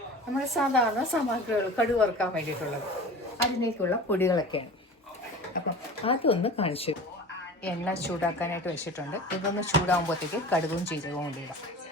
നമ്മുടെ സാധാരണ സാമഗ്രികൾ, കടുക് വറുക്കാൻ വേണ്ടിയിട്ടുള്ളത്, അതിലേക്കുള്ള പൊടികളൊക്കെയാണ്. അപ്പം അതൊന്ന് കാണിച്ചു. എണ്ണ ചൂടാക്കാനായിട്ട് വെച്ചിട്ടുണ്ട്. ഇതൊന്ന് ചൂടാകുമ്പോഴത്തേക്ക് കടുകും ജീരകവും കൂടി ഇടാം.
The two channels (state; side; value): normal; both; correlation 0.37